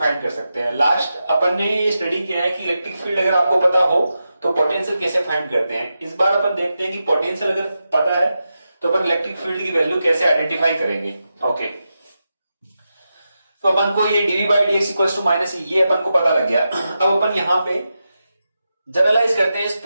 कर सकते हैं? लास्ट अपन ने ये स्टडी किया है कि इलेक्ट्रिक फील्ड अगर आपको पता हो तो पोटेंशियल कैसे फाइंड करते हैं। इस बार अपन देखते हैं कि पोटेंशियल अगर पता है तो अपन इलेक्ट्रिक फील्ड की वैल्यू कैसे आइडेंटिफाई करेंगे। ओके, तो अपन को ये DV by dx equals to minus, ये अपन को पता लग गया। अब अपन यहां पे जनरलाइज करते हैं इस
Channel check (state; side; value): inverted; both; correlation -0.89